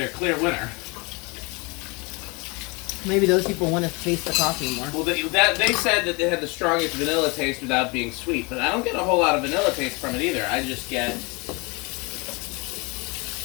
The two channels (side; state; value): right; quieter; 28.4 dB